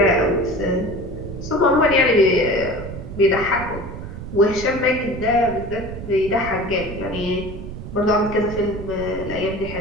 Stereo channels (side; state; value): right; noise; rumble, 10 dB below the sound